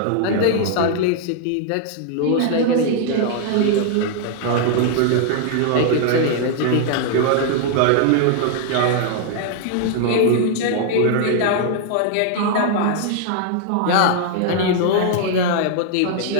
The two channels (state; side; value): different; both; correlation 0.00